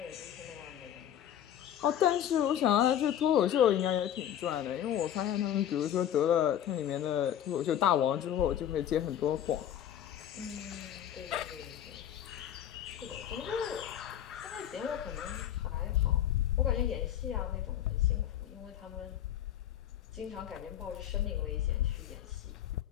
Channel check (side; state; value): right; quieter; 10.6 dB